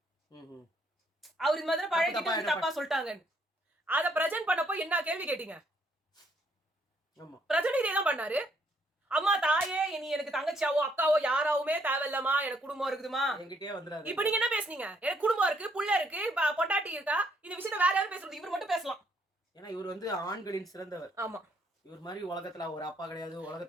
அவர் இந்த மாதிரி பழகிட்டு தப்பா சொல்லிட்டாங்க, அத பிரசன்ட் பண்ணப்போ என்ன கேள்வி கேட்டீங்க? பிரஜன் இதே தான் பண்ணாரு. அம்மா தாயே நீ எனக்கு தங்கச்சியாவோ அக்காவோ யாராவுமே தேவையில்லமா, எனக்கு குடும்பம் இருக்குதுமா, என்கிட்டயே வந்துடாது. இப்ப நீங்க என்ன பேசுனீங்க? எனக்கு குடும்பம் இருக்கு, புள்ள இருக்கு, பொண்டாட்டி இருக்கா, இந்த விஷயத்த வேற யாரும் பேசுறது, இவர் மட்டும் பேசலாம். ஏன்னா இவர் வந்து ஆண்களின் சிறந்தவர். ஆமா, இவர் மாதிரி உலகத்துல ஒரு அப்பா கிடையாது.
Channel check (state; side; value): normal; both; correlation 0.70